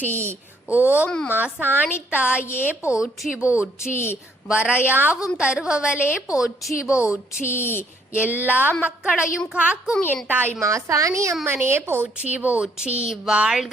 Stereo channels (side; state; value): both; normal; correlation 0.67